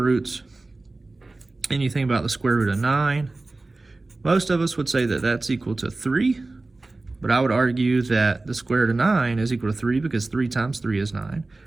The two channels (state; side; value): quieter; left; 3.2 dB